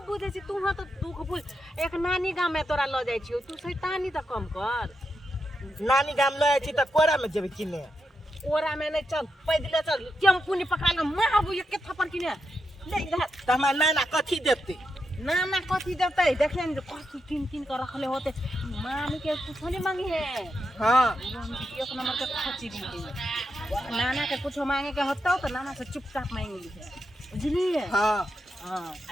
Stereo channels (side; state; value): both; normal; correlation 0.85